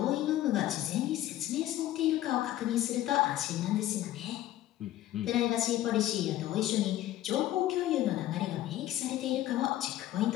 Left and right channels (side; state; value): right; quieter; 13.9 dB